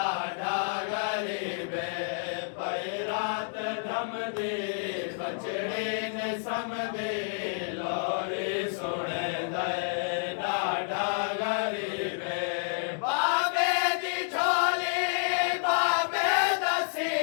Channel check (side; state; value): right; silent; digital silence